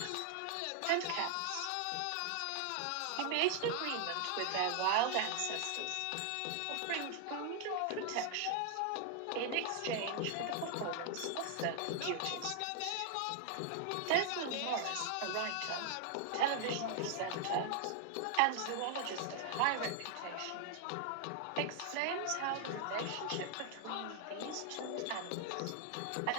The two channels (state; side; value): different; both; correlation 0.00